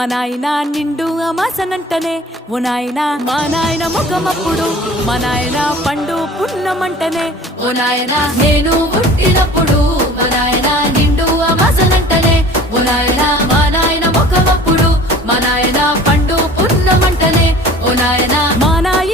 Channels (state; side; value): normal; both; correlation 0.45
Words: నాయన నిండు అమాసనంటనే ఓ నాయన మా నాయన ముఖమప్పుడు మా నాయన పండు పున్నమంటనే ఓ నాయన నేను పుట్టినప్పుడు మా నాయన నిండు అమాసనంటనే ఓ నాయన మా నాయన ముఖమప్పుడు మా నాయన పండు పున్నమంటనే ఓ నాయన మా